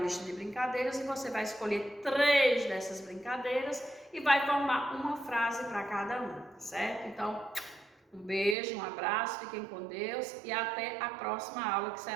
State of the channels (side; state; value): left; drops out; at 8.6 s